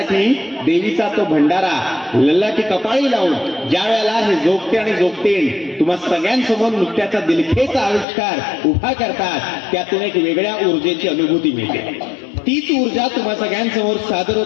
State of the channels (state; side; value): drops out; right; at 8.1 s